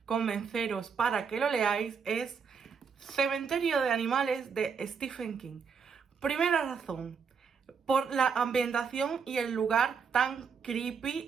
convenceros para que lo leáis es Cementerio de Animales de Stephen King. Primera razón, por la ambientación y el lugar tan creepy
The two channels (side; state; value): left; quieter; 6.1 dB